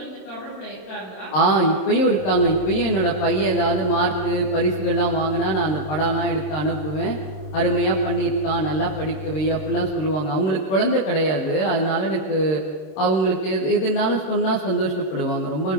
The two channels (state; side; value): late; right; 26 ms